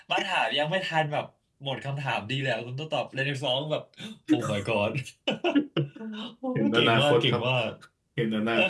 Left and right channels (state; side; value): identical; both; correlation 1.00